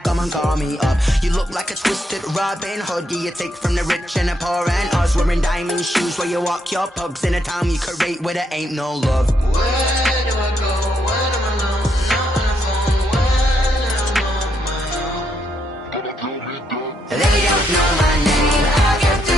come and call me up. You look like a twisted Robin Hood. You take from the rich and the poor and us. Wearing diamond shoes where you walk your pugs in a town you create where there ain't no love. Where do I go? When I'm alone? Not on the phone. When I'm on my own. They don't know my name. I get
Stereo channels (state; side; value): normal; both; correlation 0.77